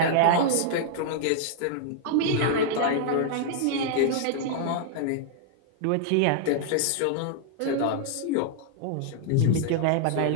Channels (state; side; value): different; both; correlation -0.01